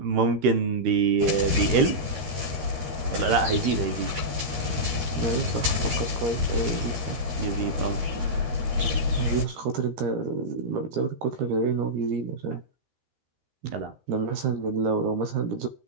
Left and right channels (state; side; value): late; left; 13 ms